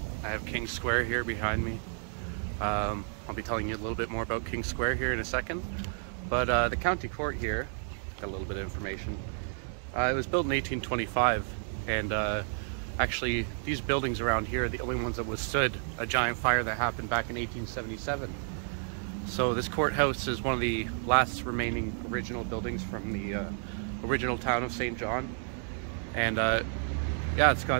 I have King Square here behind me. I'll be telling you a little bit more about King Square here in a second. But the county court here, got a little bit of information. It was built in 1825, and actually these buildings around here are the only ones that withstood a giant fire that happened back in 1877. So this courthouse is one of the last remaining original buildings from the original town of St. John. And yeah, it's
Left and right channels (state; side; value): silent; left; 57 dB below the other